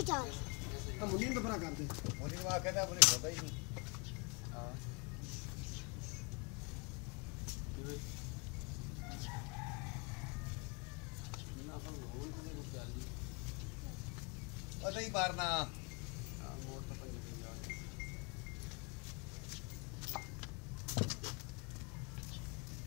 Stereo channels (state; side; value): quieter; right; 32.1 dB